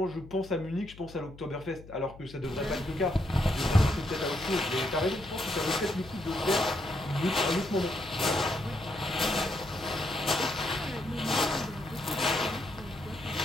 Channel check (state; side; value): noise; left; hum, 18 dB below the sound